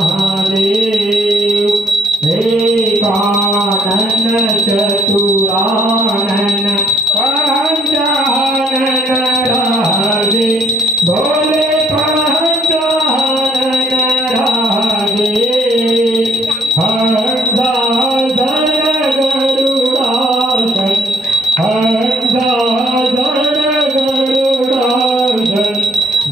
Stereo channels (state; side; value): normal; both; correlation 0.67